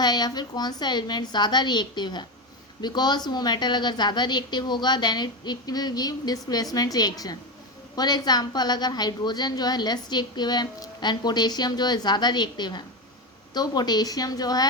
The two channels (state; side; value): normal; both; correlation 0.16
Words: या फिर कौन सा एलिमेंट ज़्यादा रिएक्टिव है. बिकॉज वो मेटल अगर ज़्यादा रिएक्टिव होगा then it will give displacement reaction. For example अगर हाइड्रोजन जो है लेस रिएक्टिव है एंड पोटेशियम जो है ज़्यादा रिएक्टिव है, तो पोटेशियम जो